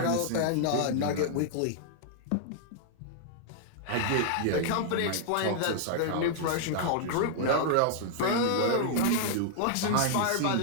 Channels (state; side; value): different; both; correlation -0.01